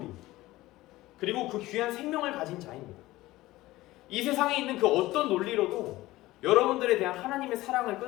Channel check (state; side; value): quieter; right; 17.7 dB